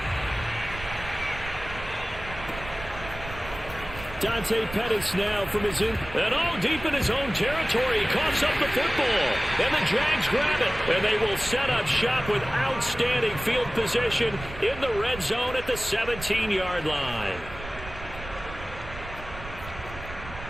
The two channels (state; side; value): noise; right; rumble, 13 dB below the sound